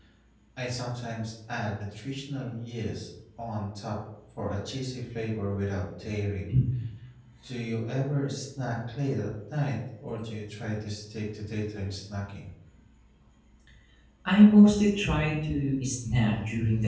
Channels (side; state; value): both; identical; correlation 1.00